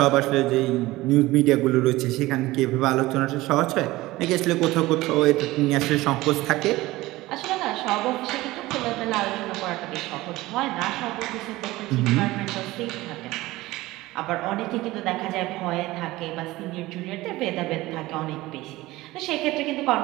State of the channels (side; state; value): left; quieter; 18.7 dB